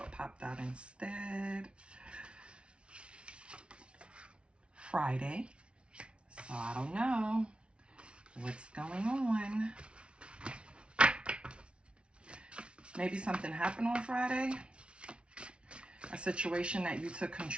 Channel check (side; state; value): left; late; 0.058 ms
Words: popped out instead. Friday. So I don't know what's going on. Maybe something happened on Friday. A situation that you took